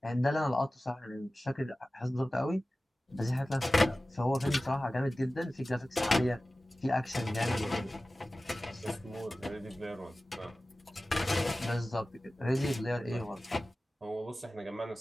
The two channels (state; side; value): normal; both; correlation 0.96